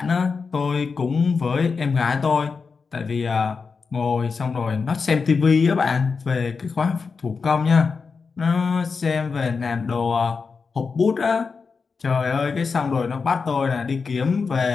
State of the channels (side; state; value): right; quieter; 5.0 dB